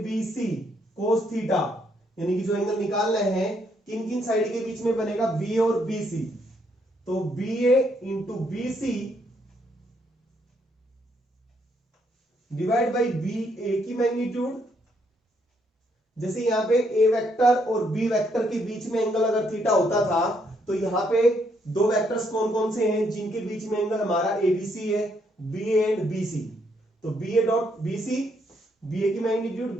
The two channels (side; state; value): both; normal; correlation 0.73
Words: B C, cos theta, यानी कि जो एंगल निकाल रहे हैं किन किन साइड के बीच में बनेगा, बी और बी सी। तो B A into B C divide by B A की मैग्नीट्यूड। जैसे यहां पे ए वेक्टर और बी वेक्टर के बीच में एंगल अगर थीटा होता था तो यहां पे दो वेक्टर्स कौन कौन से हैं जिनके बीच में एंगल हमारा एबीसी है, बी एंड बी सी। तो B A dot B C, B A की मैग्नीट्यूड